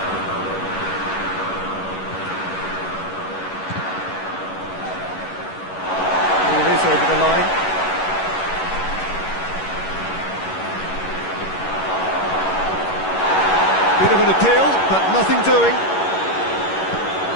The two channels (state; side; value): late; right; 11 ms